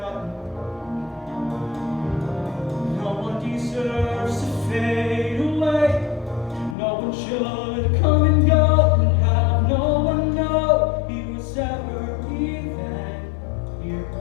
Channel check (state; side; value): drops out; right; at 6.8 s